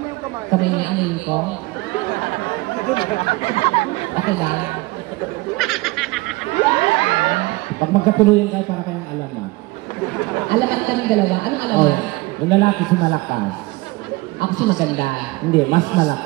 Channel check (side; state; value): left; quieter; 21.8 dB